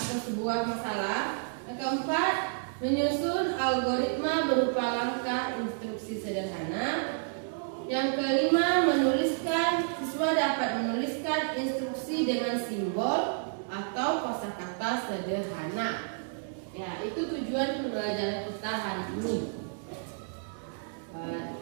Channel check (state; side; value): silent; left; digital silence